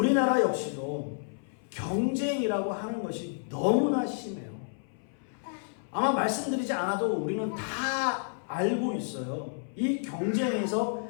역시도 경쟁이라고 하는 것이 너무나 심해요. 아마 말씀드리지 않아도 우리는 다 알고 있어요. 이 경쟁에서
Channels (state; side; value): silent; right; 57 dB below the other